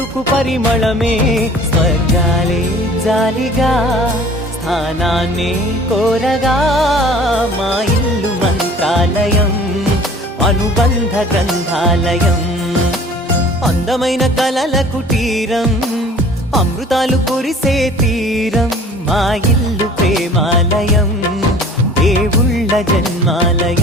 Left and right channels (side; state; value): both; normal; correlation 0.48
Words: పరిమళమే. స్వర్గాలే జాలిగా స్థానాన్ని కోరగా, మా ఇల్లు మంత్రాలయం, అనుబంధ గ్రంథాలయం. అందమైన కలల కుటీరం, అమృతాలు కురిసే తీరం, మా ఇల్లు ప్రేమాలయం, దేవుళ్ళ